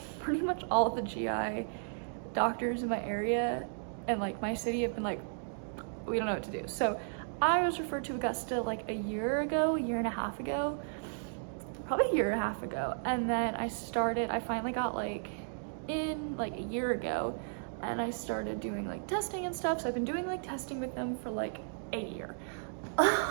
pretty much all of the GI doctors in my area and, my city have been we don't know what to do. So, I was referred to Augusta, a year and a half ago, probably a year and a half ago, and then I finally got, in a year ago, and I started doing testing and stuff. So I've been doing testing with them for a year,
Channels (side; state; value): left; silent; digital silence